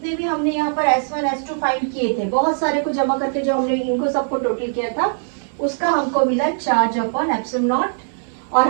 भी हमने यहाँ पर S1 S2 फाइंड किए थे, बहुत सारे को जमा करके जो हमने इनको सबको टोटल किया था, उसका हमको मिला चार्ज अपॉन एप्सिलॉन नॉट। और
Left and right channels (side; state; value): left; silent; digital silence